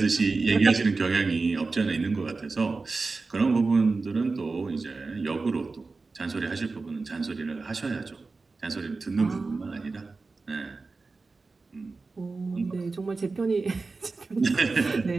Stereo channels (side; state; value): left; quieter; 3.9 dB